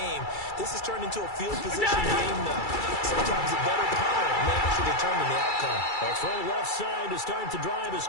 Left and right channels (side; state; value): right; late; 2.3 ms